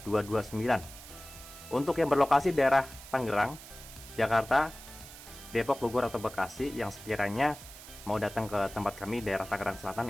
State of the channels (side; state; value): right; noise; hiss, 16 dB below the sound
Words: 7229. Untuk yang berlokasi daerah Tangerang, Jakarta, Depok, Bogor, atau Bekasi yang sekiranya mau datang ke tempat kami daerah Tangerang Selatan,